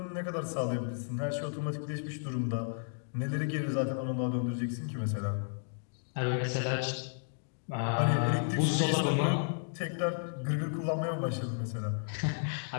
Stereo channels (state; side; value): silent; right; digital silence